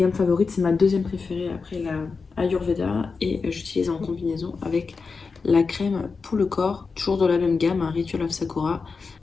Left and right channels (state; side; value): quieter; right; 4.7 dB